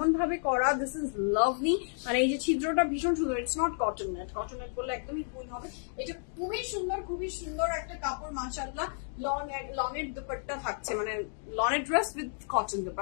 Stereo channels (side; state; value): right; silent; digital silence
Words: ভাবে করা, দিস ইজ লাভলি। মানে এই যে ছিদ্রটা ভীষণ সুন্দর, it's not cotton net, cotton net বললে একদমই ভুল হবে। এটা খুবই সুন্দর, খুবই সুন্দর একটা কাপড় মাশাআল্লাহ। লনের দুপাট্টা থাকছে, মানে লনের ড্রেস উইথ কটন